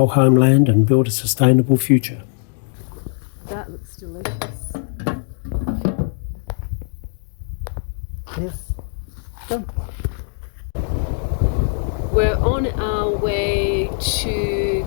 homeland and build a sustainable future. That looks delicious. Yes. Done. We're on our way to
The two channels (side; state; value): right; silent; digital silence